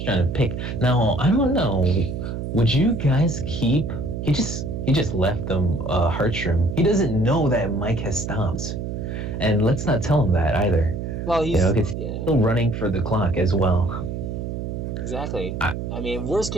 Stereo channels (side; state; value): right; noise; hum, 5 dB below the sound